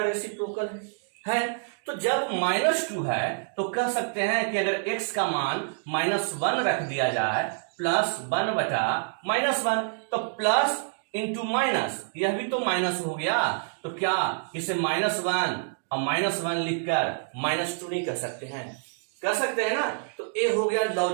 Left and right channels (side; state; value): left; silent; digital silence